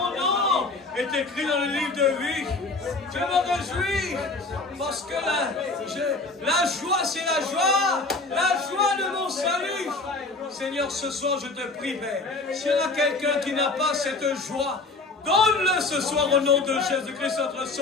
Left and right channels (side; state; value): right; quieter; 3.4 dB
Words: nom est écrit dans le livre de vie. Je me réjouis parce que la joie, c'est la joie. La joie de mon salut. Seigneur, ce soir, je te prie, Père. S'il y en a quelqu'un qui n'a pas cette joie, donne-le ce soir au nom de Jésus-Christ, notre